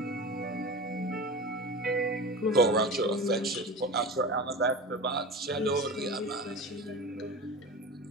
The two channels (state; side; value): normal; both; correlation 0.30